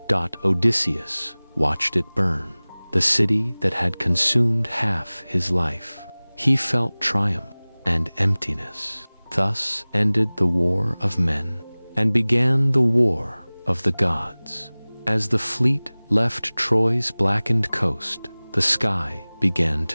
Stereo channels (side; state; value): both; inverted; correlation -1.00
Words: Odysseus watched it burn, the city that had consumed half his life. He felt triumph and emptiness. Thus ended the war of men, and began the war of the gods. As the fleet left Troy's blackened coast, the sky began